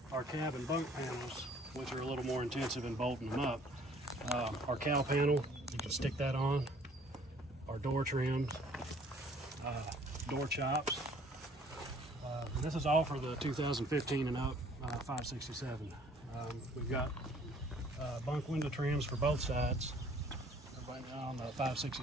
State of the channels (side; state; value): both; normal; correlation 0.57